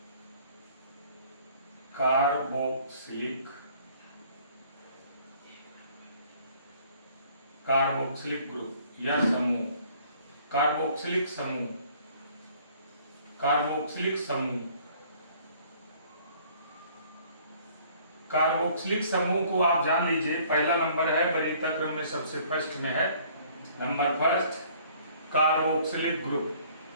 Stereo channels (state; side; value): inverted; both; correlation -0.57